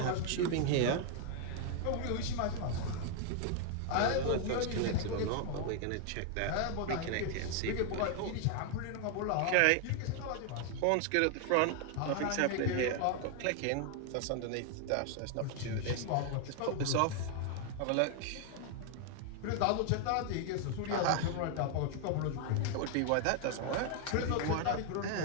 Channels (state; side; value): different; both; correlation 0.00